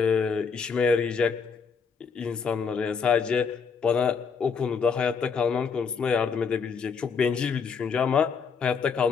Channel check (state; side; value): quieter; right; 5.8 dB